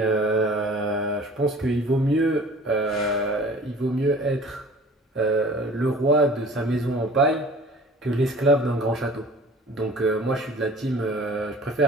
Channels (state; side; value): normal; both; correlation 0.46